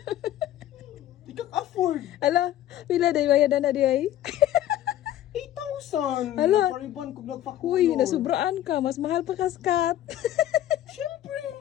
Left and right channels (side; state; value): right; quieter; 12.6 dB